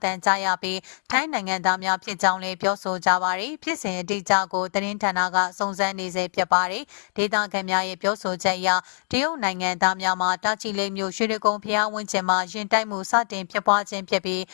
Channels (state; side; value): silent; right; digital silence